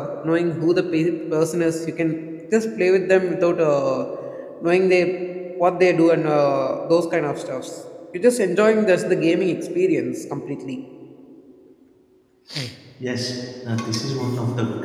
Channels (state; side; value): identical; both; correlation 1.00